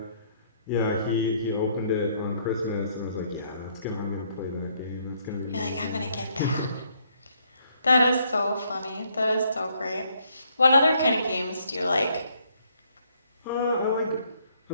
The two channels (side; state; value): both; inverted; correlation -0.69